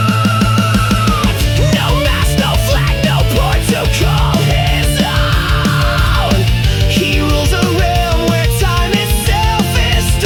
No mask, no flag, no port to call his own. He rules a realm where time itself is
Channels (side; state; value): both; identical; correlation 1.00